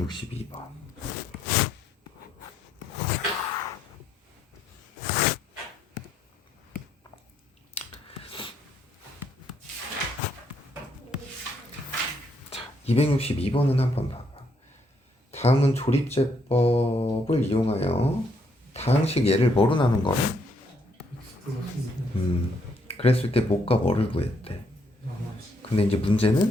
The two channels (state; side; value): normal; both; correlation 0.73